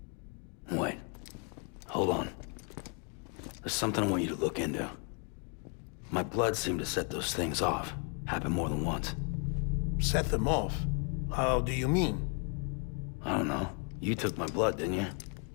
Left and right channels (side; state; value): right; quieter; 37.3 dB